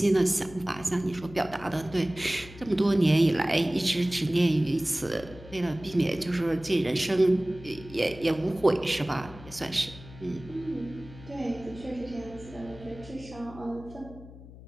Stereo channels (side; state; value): left; noise; hum, 17 dB below the sound